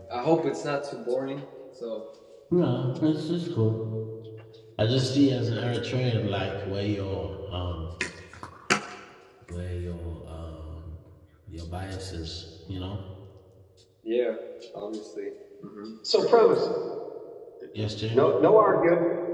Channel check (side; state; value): both; identical; correlation 1.00